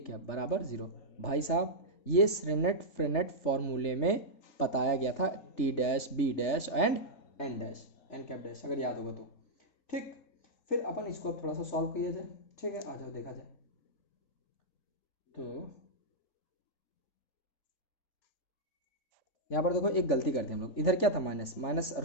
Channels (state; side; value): late; right; 3.3 ms